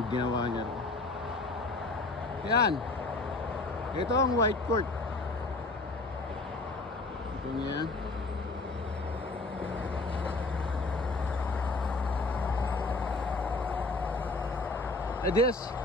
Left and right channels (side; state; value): right; quieter; 3.1 dB